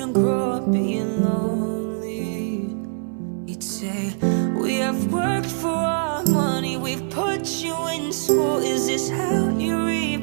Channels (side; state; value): left; silent; 60 dB below the other